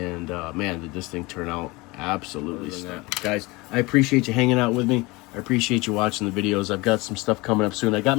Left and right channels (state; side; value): quieter; right; 23.5 dB